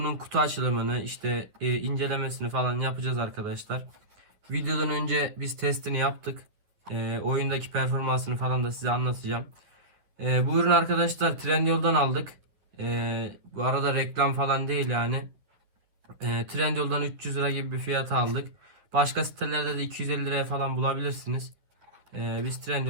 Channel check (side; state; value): left; late; 10 ms